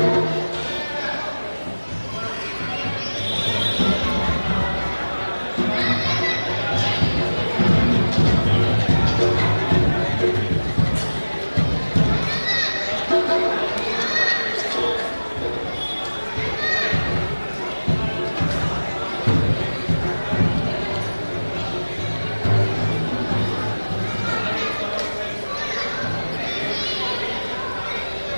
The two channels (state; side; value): inverted; both; correlation -1.00